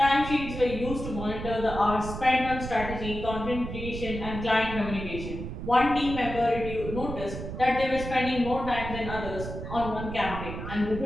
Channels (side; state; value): right; noise; rumble, 7 dB below the sound